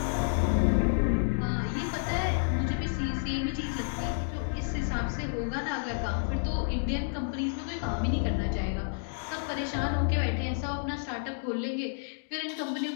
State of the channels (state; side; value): silent; right; digital silence